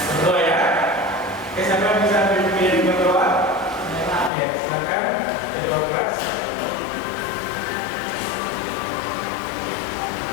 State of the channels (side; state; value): right; drops out; at 4.3 s